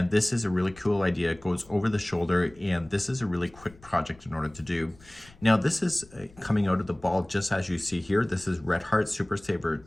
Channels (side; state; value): left; noise; rumble, 25 dB below the sound